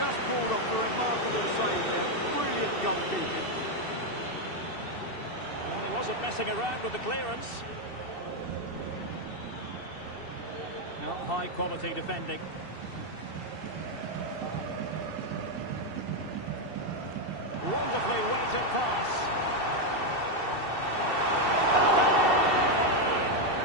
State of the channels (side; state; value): right; late; 2.7 ms